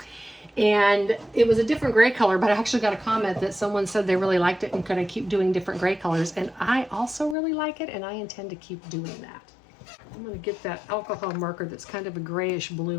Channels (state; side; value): drops out; right; at 7.4 s